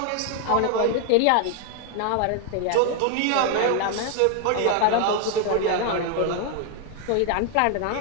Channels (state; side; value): different; both; correlation 0.00